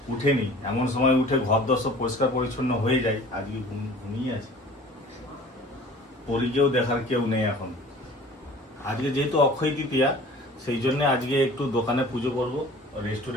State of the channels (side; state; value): both; normal; correlation 0.46